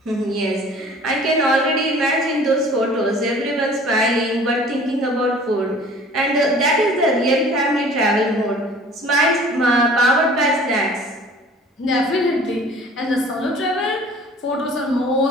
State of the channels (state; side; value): normal; both; correlation 0.48